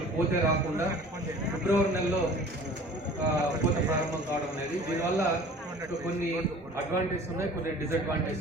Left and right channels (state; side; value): normal; both; correlation 0.46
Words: పూతే రాకుండా ఫిబ్రవరి నెలలో పూత ప్రారంభం కావడం అనేది, దీనివల్ల కొన్ని అడ్వాంటేజ్ ఉన్నాయి, కొన్ని డిసడ్వాంటేజ్